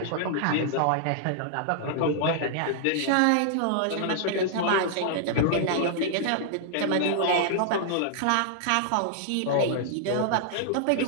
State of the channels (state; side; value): different; both; correlation -0.01